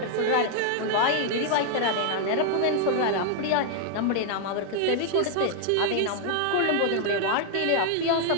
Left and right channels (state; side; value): different; both; correlation 0.00